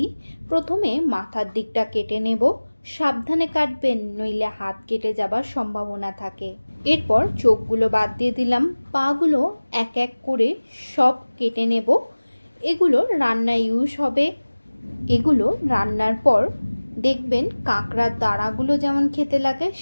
প্রথমে মাথার দিকটা কেটে নেব। সাবধানে কাটবেন, নইলে হাত কেটে যাবার সম্ভাবনা থাকে। এরপর চোখগুলো বাদ দিয়ে দিলাম। পাগুলো এক এক করে সব কেটে নেব। এগুলো রান্নায় ইউজ হবে। এগুলো রান্নার পর দেখবেন কাঁকড়ার দাঁড়াগুলো যেমন খেতে লাগে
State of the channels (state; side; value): inverted; both; correlation -1.00